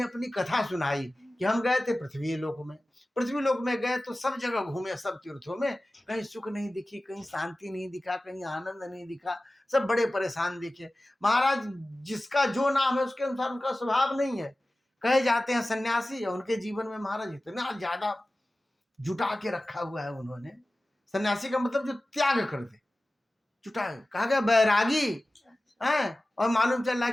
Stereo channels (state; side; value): normal; both; correlation 0.96